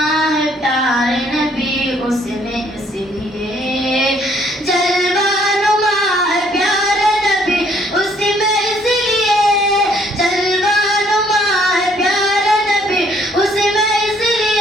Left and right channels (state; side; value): normal; both; correlation 0.64